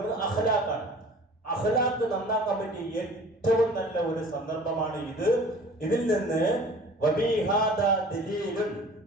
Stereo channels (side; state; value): both; normal; correlation 0.46